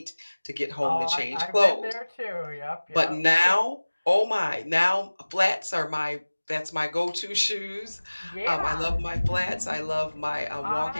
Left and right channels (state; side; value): inverted; both; correlation -1.00